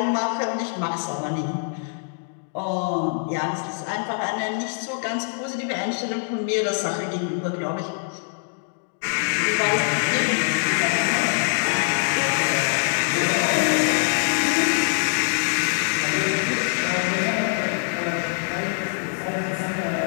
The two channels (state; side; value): silent; right; digital silence